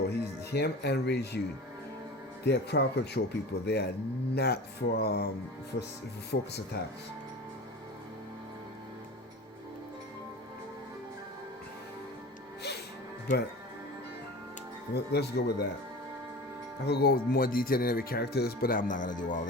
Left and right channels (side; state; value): both; normal; correlation 0.35